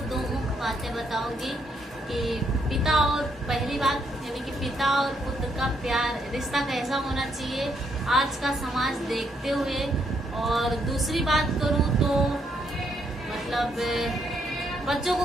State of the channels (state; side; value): normal; both; correlation 0.74